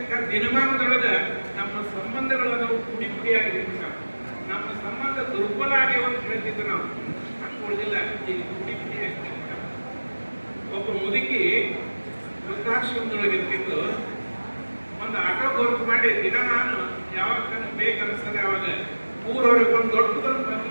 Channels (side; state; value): both; inverted; correlation -1.00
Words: ದಿನಮಾನದೊಳಗ ನಮ್ಮ ಸಂಬಂಧಗಳನ್ನು ಪುಡಿ ಪುಡಿಯಾಗಿರ್ಬೇಕು. ನಮ್ಮ ಸಂಬಂಧ ದುರ್ಬಲ ಆಗ್ಯಾವ ಅಂತ ಹೇಳ್ತಿದ್ದು ನಾವು ಹಂಗೆ ಉಳಿದಿಲ್ಲ. ಈಗ ಪುಡಿ ಪುಡಿಯಾಗಿ ಒಬ್ಬ ಮುದುಕಿ ವೃದ್ಧಾಶ್ರಮದೊಳಗೆ ಇರ್ತಿದ್ದು ಒಂದು ಆಟೋ ಗೊತ್ತು ಮಾಡಿ ದಿನ ನಾನು ಯಾವಾಗ ಬೇಕನ್ನಿಸ್ತದೆ ಅವಾಗ ಊರೊಳಗೆ ಒಂದು ದೊಡ್ಡದೊಂದು